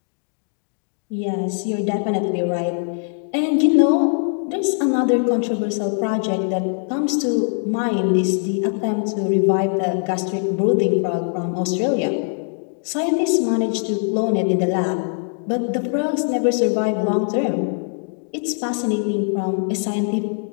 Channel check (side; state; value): right; silent; 58 dB below the other